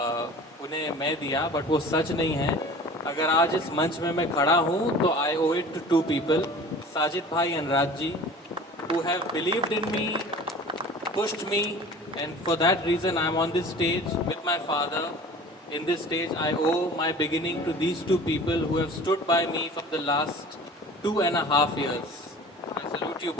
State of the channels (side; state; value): both; normal; correlation 0.42